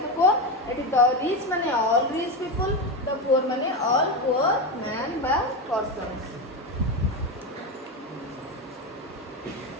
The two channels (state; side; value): normal; both; correlation 0.15